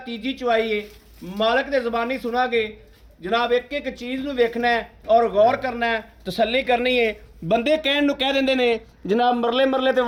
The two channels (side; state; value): both; identical; correlation 1.00